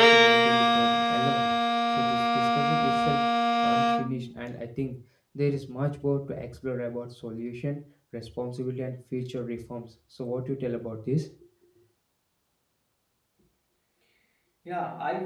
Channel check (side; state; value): both; identical; correlation 1.00